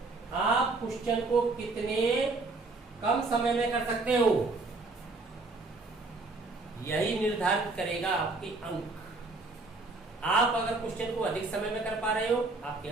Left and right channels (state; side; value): quieter; left; 3.4 dB